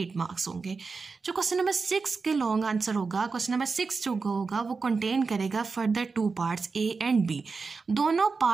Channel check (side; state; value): left; quieter; 4.5 dB